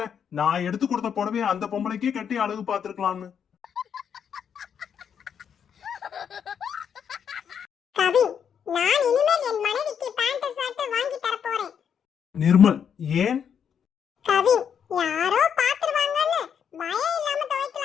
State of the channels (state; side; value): quieter; right; 7.8 dB